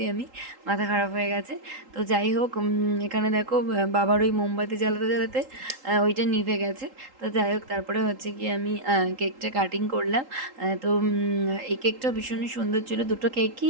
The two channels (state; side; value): late; left; 3.8 ms